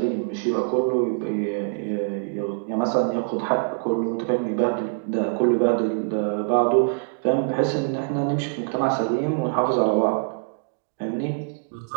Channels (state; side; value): silent; left; digital silence